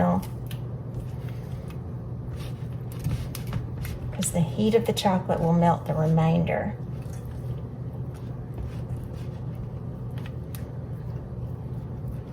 Because the heat of the chocolate will melt the remainder.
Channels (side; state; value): both; identical; correlation 1.00